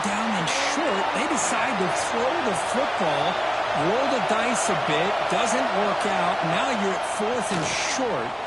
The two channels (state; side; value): identical; both; correlation 1.00